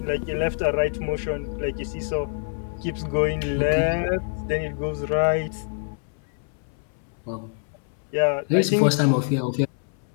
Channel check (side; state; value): right; silent; 61 dB below the other